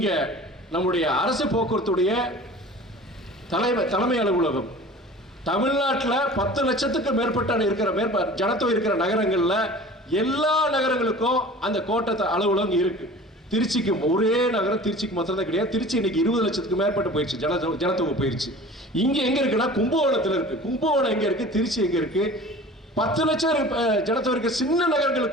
நம்முடைய அரசு போக்குவரத்துடைய தலைமை அலுவலகம் தமிழ்நாட்டில் 10 லட்சத்துக்கு மேற்பட்ட ஜனத்தொகை இருக்கிற நகரங்கள்ல எல்லா நகரங்களுக்கும் அந்த கோட்டை அலுவலகம் இருக்கு. திருச்சிக்கு ஒரே நகரம் திருச்சிக்கு மாத்திரம் தான் கிடையாது. திருச்சி இன்னைக்கு 20 லட்சத்துக்கு மேற்பட்டு போயிடுச்சு, ஜனத்தொகை போயிடுச்சு. இங்க எங்க இருக்குன்னா கும்பகோணத்துல இருக்கு. கும்பகோணம் எங்க இருக்கு, திருச்சி எங்க இருக்கு. 10 லட்சம் ஜனத்தொகை இருக்க சின்ன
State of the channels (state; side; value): normal; both; correlation 0.42